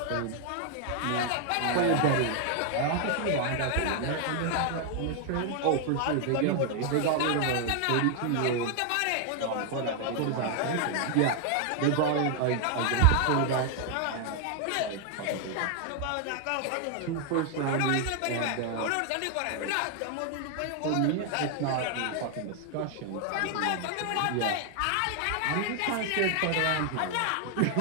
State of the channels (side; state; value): both; different; correlation 0.00